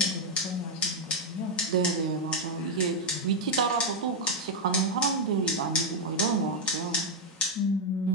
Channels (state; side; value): normal; both; correlation 0.00